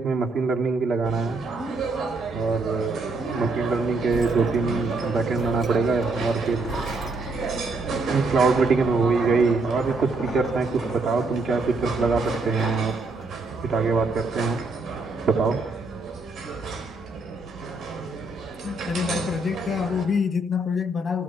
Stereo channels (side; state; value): left; quieter; 3.0 dB